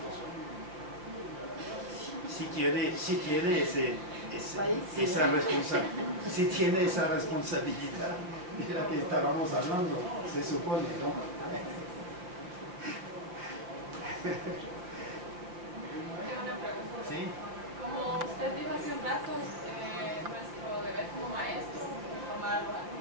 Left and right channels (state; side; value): late; left; 5.6 ms